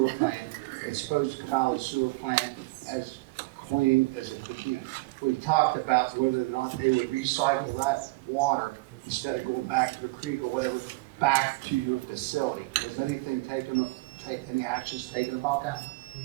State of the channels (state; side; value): quieter; left; 23.6 dB